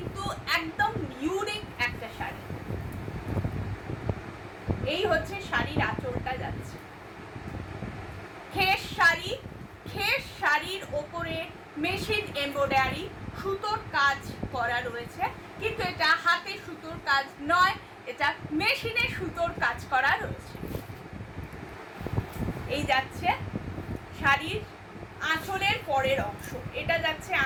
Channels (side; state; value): both; identical; correlation 1.00